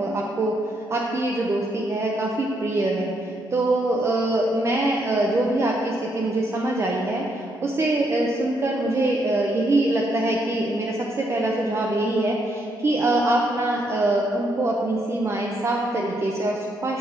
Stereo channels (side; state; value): both; normal; correlation 0.75